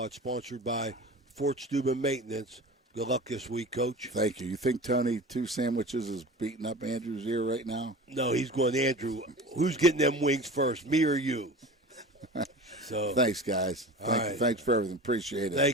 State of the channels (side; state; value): both; normal; correlation 0.35